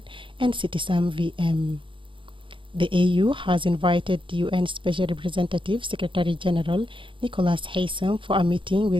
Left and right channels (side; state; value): left; late; 0.25 ms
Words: and Citizen VM. The AU has invited the UN Special Representative Secretary General Nicholas Haysom for a meeting